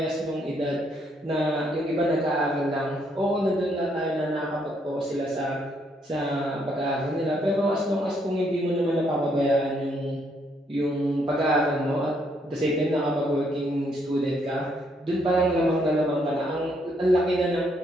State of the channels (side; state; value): both; normal; correlation 0.72